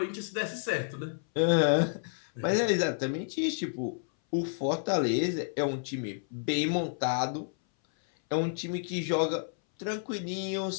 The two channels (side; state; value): right; silent; 58 dB below the other